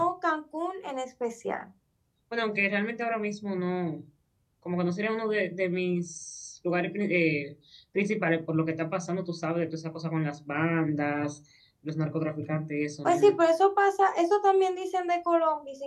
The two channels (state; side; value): identical; both; correlation 1.00